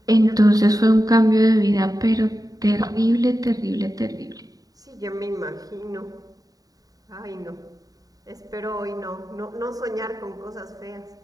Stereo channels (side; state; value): left; late; 0.18 ms